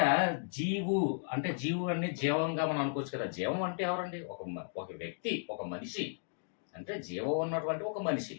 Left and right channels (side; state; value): right; silent; digital silence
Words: జీవు అంటే జీవు అన్ని జీవంగా మనం అనుకోవచ్చు కదా. జీవం అంటే ఎవరండి? ఒక వ్యక్తి, ఒక మనిషి. అంటే జీవం ఉన్నటువంటి ఒక మనిషి,